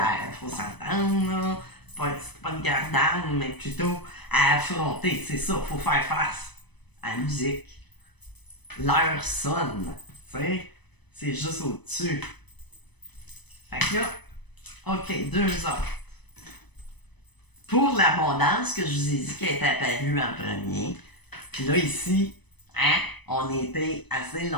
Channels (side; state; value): right; late; 0.99 ms